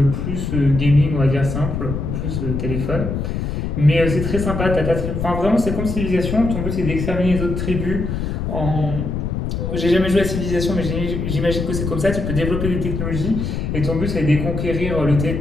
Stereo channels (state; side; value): noise; left; rumble, 3 dB below the sound